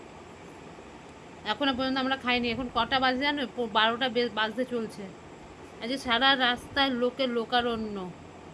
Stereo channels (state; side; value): identical; both; correlation 1.00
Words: এখনও পর্যন্ত আমরা খাইনি। এখন কটা বাজে জানো? 12টা বাজতে চলছে। আজকে সারা রাস্তায় লোকের লোকারণ্য,